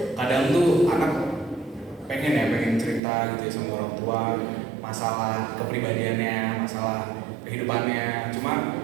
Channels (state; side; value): drops out; left; at 3.0 s